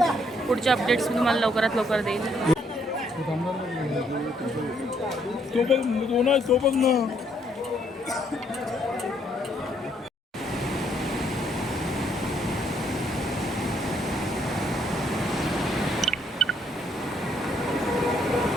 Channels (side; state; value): both; normal; correlation 0.70